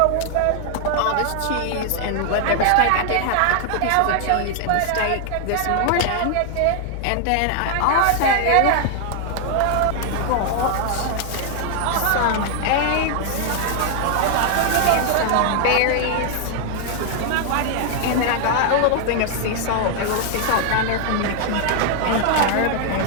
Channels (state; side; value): different; both; correlation 0.00